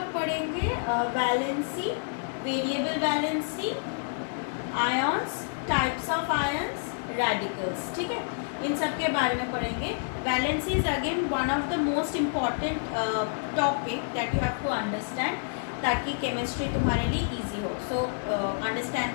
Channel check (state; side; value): silent; right; digital silence